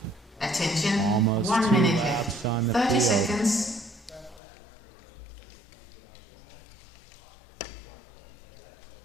Attention, Almost 1 2 minute laps left. on the 30 field. seconds.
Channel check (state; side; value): drops out; right; at 4.4 s